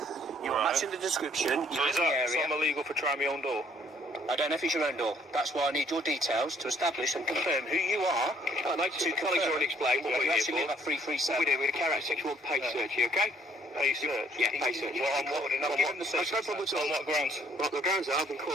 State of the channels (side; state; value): both; normal; correlation 0.62